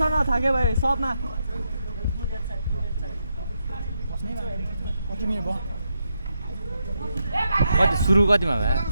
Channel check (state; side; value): inverted; both; correlation -0.82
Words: न थाके भाइ सबमा कति सुरु कतिमा भयो